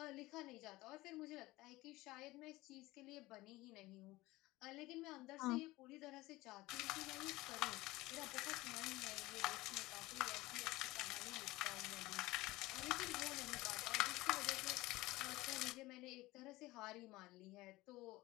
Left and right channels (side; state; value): right; quieter; 19.5 dB